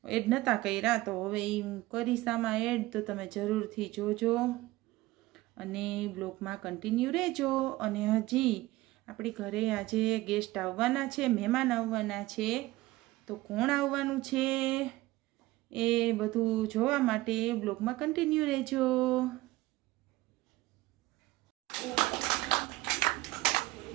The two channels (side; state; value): left; quieter; 18.4 dB